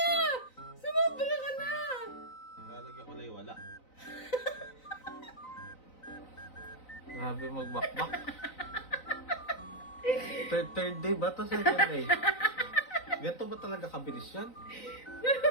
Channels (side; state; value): right; late; 3.9 ms